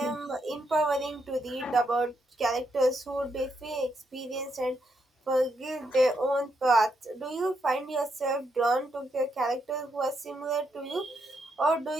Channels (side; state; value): both; normal; correlation 0.79